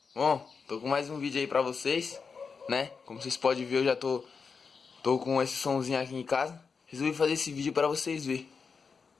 Bom, tô com mais um vídeo aí pra vocês, né? Como vocês podem ver, eu já tô com esse somzinho aqui em casa. Resolvi fazer esse vídeo pra vocês verem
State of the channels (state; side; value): quieter; right; 5.4 dB